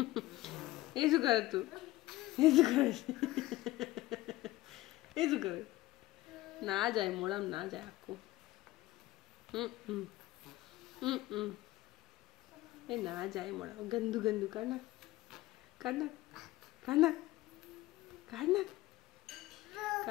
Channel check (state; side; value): quieter; right; 17.5 dB